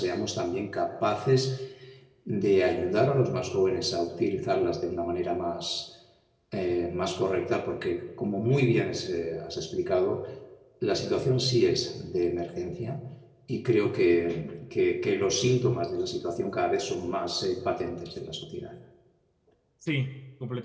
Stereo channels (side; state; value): both; identical; correlation 1.00